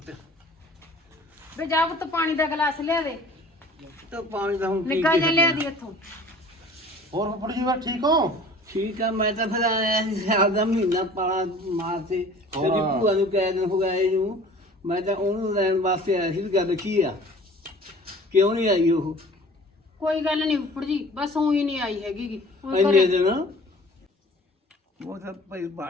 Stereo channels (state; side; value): normal; both; correlation 0.47